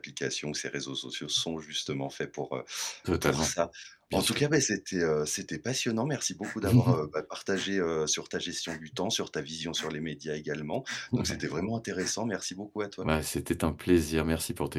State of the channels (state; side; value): identical; both; correlation 1.00